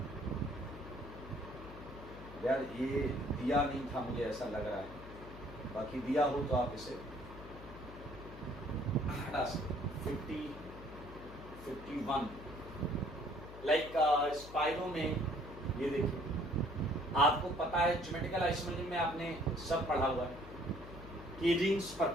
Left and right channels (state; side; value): noise; left; hum, 14 dB below the sound